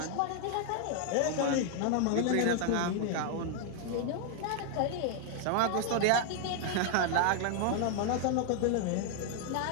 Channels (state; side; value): different; both; correlation 0.00